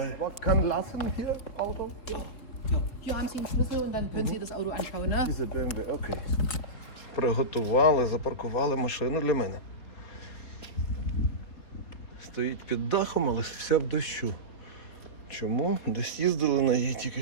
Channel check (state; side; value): late; right; 4.2 ms